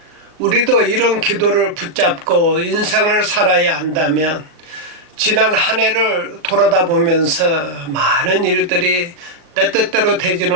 우리도 이런 기도를 붙잡고 인생을 살아야 한다면 지난 한 해를 돌아다보면서 많은 일들이 내 뜻대로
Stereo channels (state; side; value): late; left; 38 ms